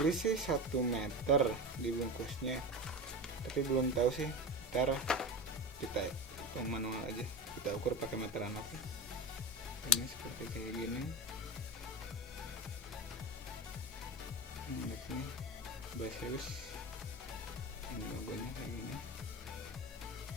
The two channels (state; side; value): normal; both; correlation 0.21